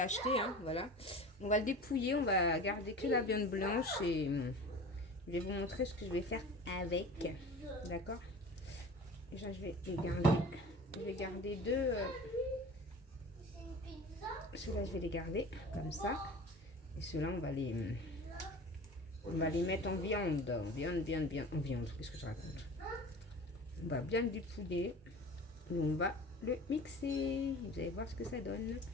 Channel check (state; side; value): normal; both; correlation 0.38